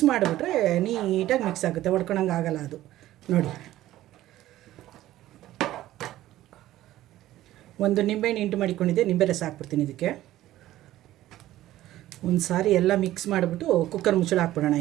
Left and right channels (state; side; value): quieter; left; 14.6 dB